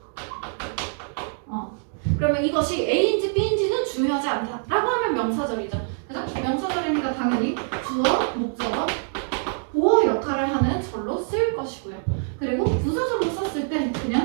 그러면 이것이 A인지 B인지는 중요하지 않다 라고 하면 명사절이죠. 그죠? 명사절이니까 당연히 주어, 목적어, 보어 역할을 하는 절로 쓸 것이고요. 그리고 부사절로 썼을 때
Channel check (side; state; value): left; silent; 56 dB below the other